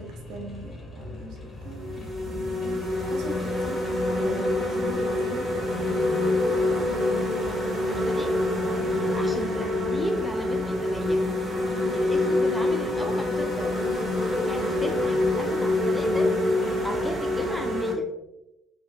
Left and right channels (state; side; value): normal; both; correlation 0.78